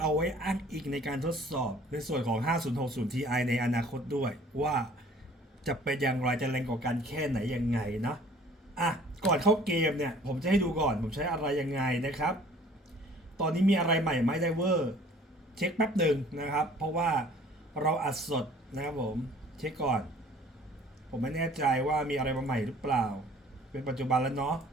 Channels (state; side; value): normal; both; correlation 0.53